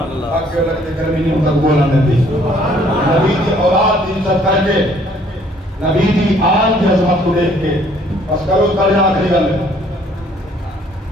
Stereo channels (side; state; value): both; normal; correlation 0.61